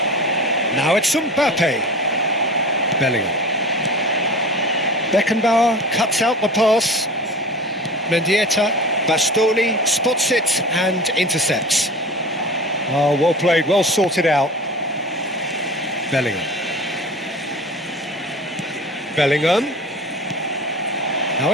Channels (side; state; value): both; normal; correlation 0.36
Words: Now it's Mbappe. Bellingham. Beckenbauer cuts out the pass. Mendieta. Bastoni spots it and intercepts. Oh, well played, well sorted out. Bellingham. Bellingham. Now